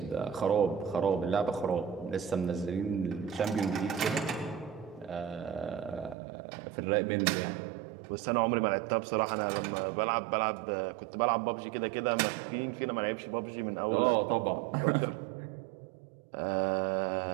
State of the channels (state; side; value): drops out; left; at 6.2 s